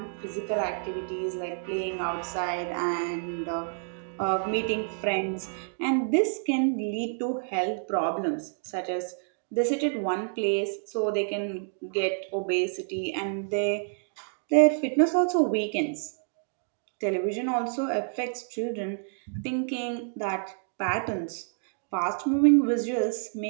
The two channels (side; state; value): left; silent; digital silence